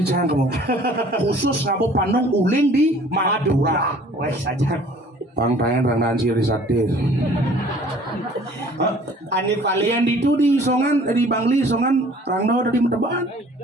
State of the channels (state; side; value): normal; both; correlation 0.52